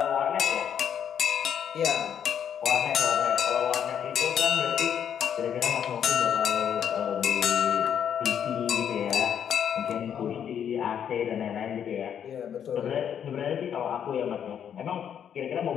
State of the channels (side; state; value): right; quieter; 8.7 dB